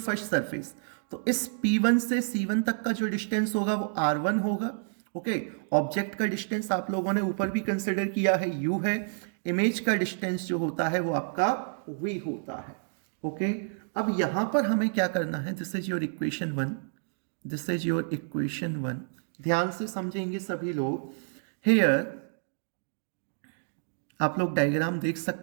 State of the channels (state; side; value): silent; left; digital silence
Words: surface. तो इस P1 से C1 तक का जो डिस्टेंस होगा वो R1 होगा। ओके, ऑब्जेक्ट का डिस्टेंस आप लोगों ने ऊपर भी कंसिडर किया है U है, इमेज का डिस्टेंस जो होता है वो आपका V होता है। ओके, अब यहां पर हमें क्या करना है, this is your equation 1, this is your equation 1, ध्यान से समझेंगे सभी लोग। हेयर आप लोग डायग्राम देख